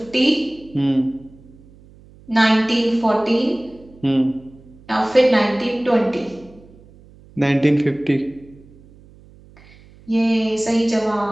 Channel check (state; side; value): noise; right; hum, 25 dB below the sound